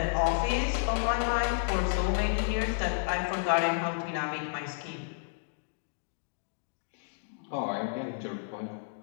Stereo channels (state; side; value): silent; right; digital silence